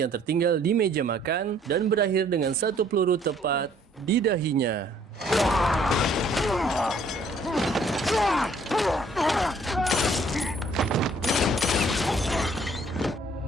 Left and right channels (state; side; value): normal; both; correlation 0.61